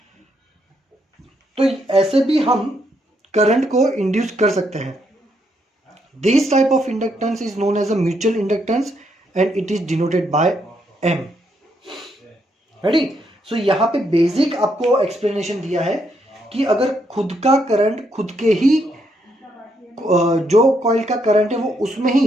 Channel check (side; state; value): both; normal; correlation 0.76